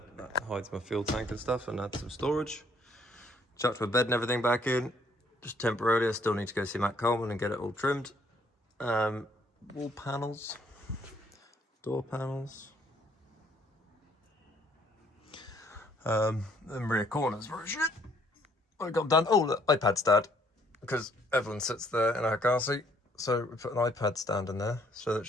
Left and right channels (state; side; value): normal; both; correlation 0.65